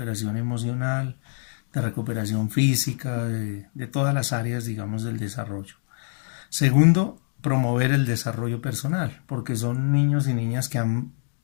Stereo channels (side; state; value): right; silent; digital silence